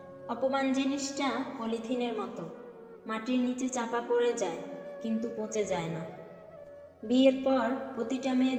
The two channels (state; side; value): identical; both; correlation 1.00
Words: অপমান জিনিসটা পলিথিনের মতো, মাটির নিচে চাপা পড়ে যায় কিন্তু পচে যায় না। বিয়ের পর প্রতিটা মেয়ে